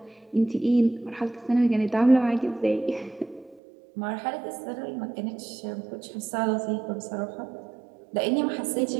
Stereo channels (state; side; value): drops out; left; at 3.6 s